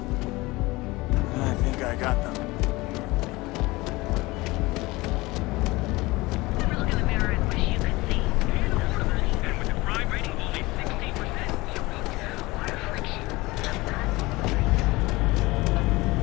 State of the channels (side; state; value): right; quieter; 21.5 dB